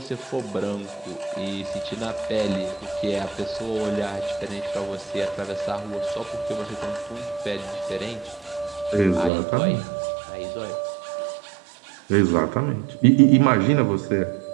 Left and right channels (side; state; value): left; drops out; at 9.3 s